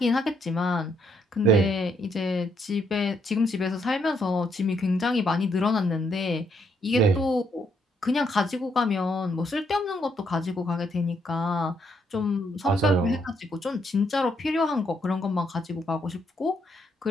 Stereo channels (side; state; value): both; normal; correlation 0.74